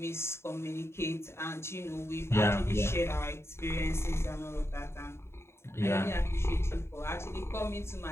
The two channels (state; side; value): late; right; 0.12 ms